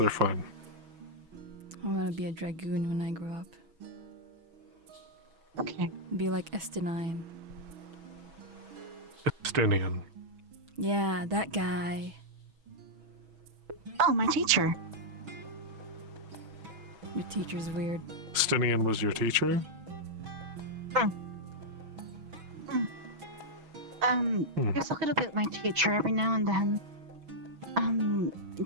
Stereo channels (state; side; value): late; left; 6.2 ms